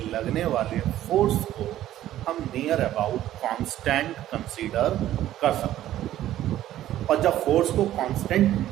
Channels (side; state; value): left; quieter; 13.1 dB